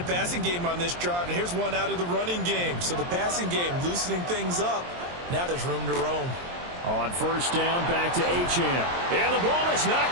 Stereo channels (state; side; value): late; left; 23 ms